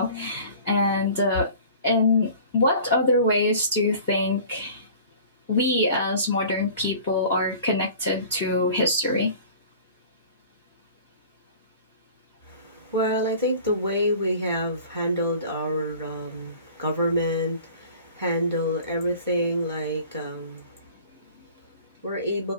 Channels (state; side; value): inverted; both; correlation -0.45